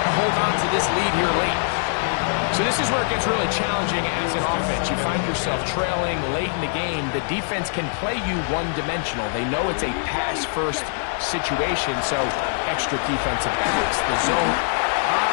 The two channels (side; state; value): right; silent; 58 dB below the other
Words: hold on to this lead here late. So this is where it gets really challenging as an offense. You find yourself trailing late in the game. The defense can play you one-dimensional. They know it's a pass-first situation, so extra defensive backs, the zone.